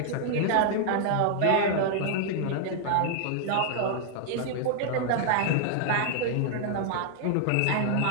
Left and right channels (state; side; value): different; both; correlation -0.01